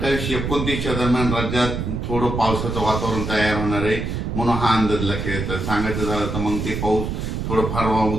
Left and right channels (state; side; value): noise; right; rumble, 3 dB below the sound